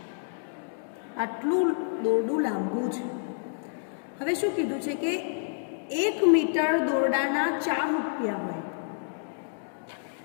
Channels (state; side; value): silent; right; digital silence